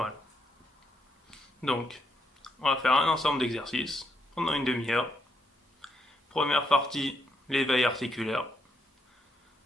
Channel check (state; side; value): normal; both; correlation 0.76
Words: Donc, on va faire un ensemble d'exercices pendant une demi-heure. Première partie, l'éveil articulaire.